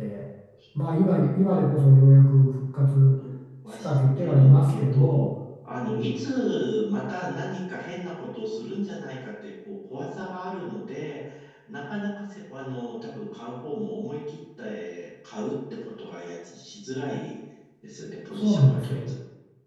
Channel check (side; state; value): both; identical; correlation 1.00